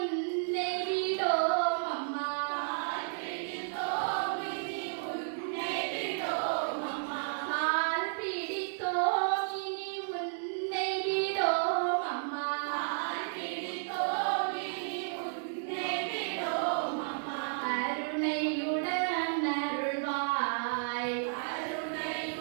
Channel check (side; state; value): left; silent; 56 dB below the other